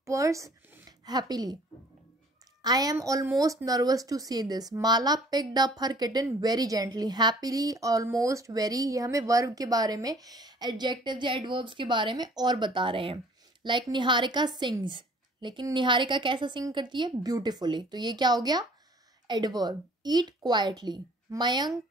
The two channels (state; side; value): normal; both; correlation 0.54